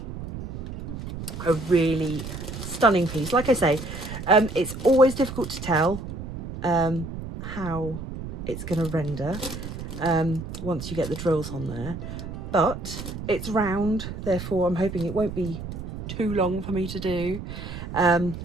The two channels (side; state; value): right; noise; rumble, 8 dB below the sound